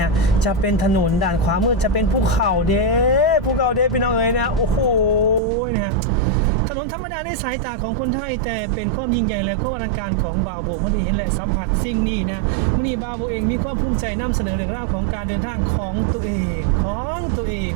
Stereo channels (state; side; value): drops out; left; at 5.4 s